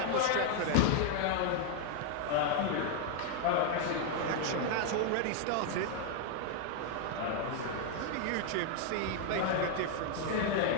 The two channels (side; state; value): both; different; correlation 0.00